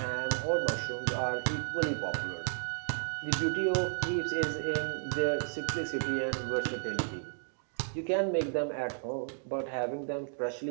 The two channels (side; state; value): left; silent; digital silence